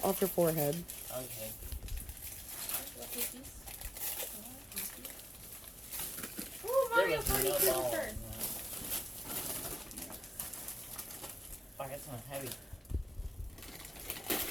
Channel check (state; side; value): normal; both; correlation 0.97